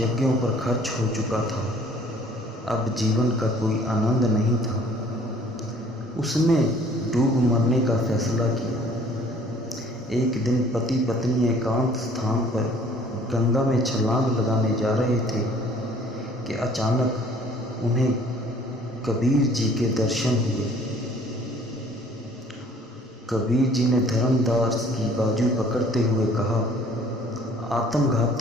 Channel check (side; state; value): both; normal; correlation 0.55